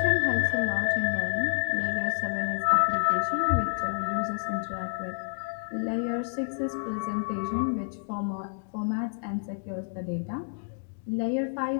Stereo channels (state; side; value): silent; right; digital silence